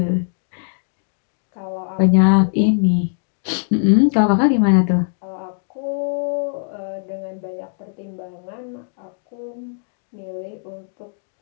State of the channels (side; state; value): right; silent; digital silence